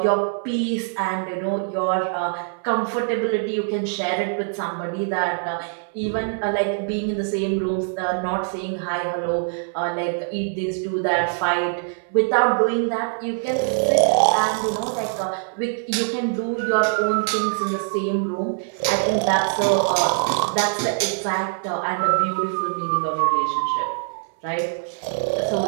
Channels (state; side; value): silent; left; 63 dB below the other